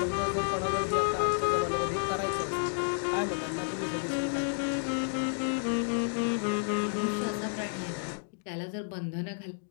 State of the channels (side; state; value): right; silent; digital silence